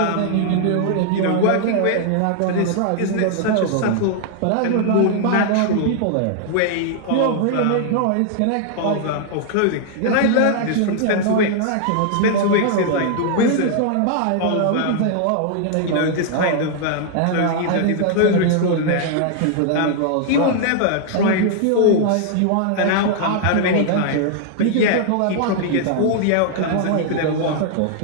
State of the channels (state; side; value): different; both; correlation -0.01